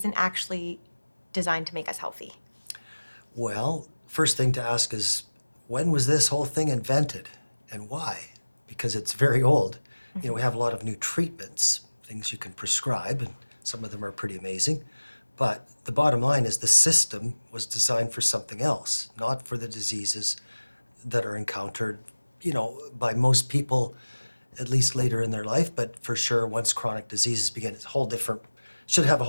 actually designed to make us healthy? Well, first thing to ask is, when was this whole thing invented and why? Because it's very old. We have a lot of new treatments, things you can prescribe, and some of them are pretty amazing. But the bottom line is the system was designed for something else, not for the diseases that are encountered, by most people, at least later in their life, but for sure once chronic diseases begin, it's a whole different, should have a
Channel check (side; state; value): both; inverted; correlation -1.00